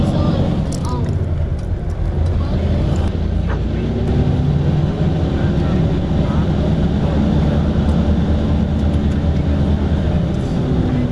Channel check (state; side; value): identical; both; correlation 1.00